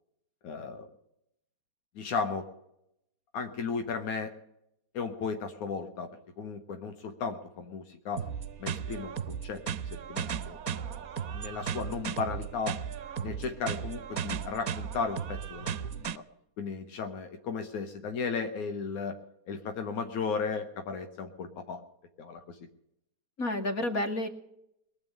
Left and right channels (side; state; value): right; late; 4.2 ms